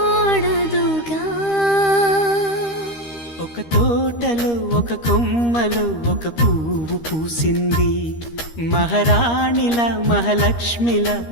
ఒక తోటలో ఒక కొమ్మలో ఒక పువ్వు పూసింది. మహారాణిల మహాలక్ష్మిల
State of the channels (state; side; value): late; right; 13 ms